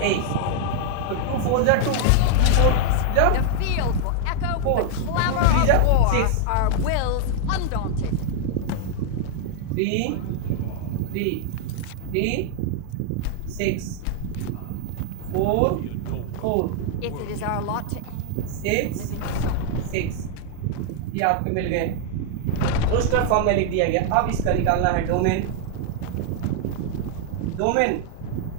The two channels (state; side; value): different; both; correlation 0.00